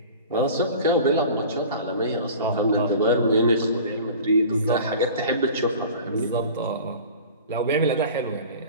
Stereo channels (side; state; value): both; inverted; correlation -0.40